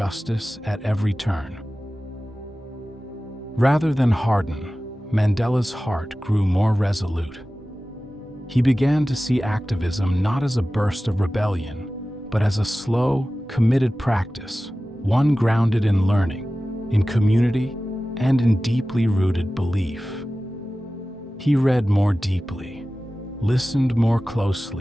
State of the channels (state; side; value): normal; both; correlation 0.96